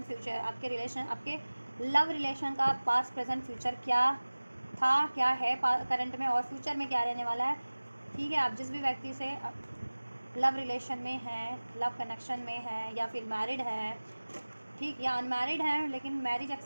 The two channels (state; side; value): inverted; both; correlation -1.00